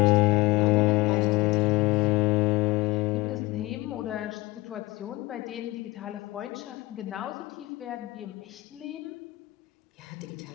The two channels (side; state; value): right; quieter; 20.0 dB